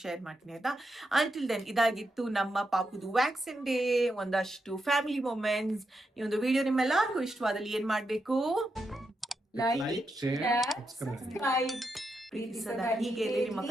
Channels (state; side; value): normal; both; correlation 0.84